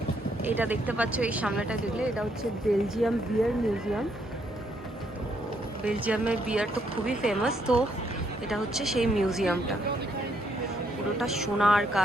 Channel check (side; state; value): both; normal; correlation 0.73